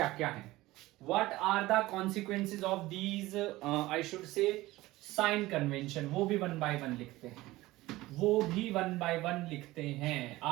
क्या हैं? What are the consequences of these, I should say sign convention, वो भी वन बाय वन लिखते हैं।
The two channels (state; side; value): quieter; left; 18.4 dB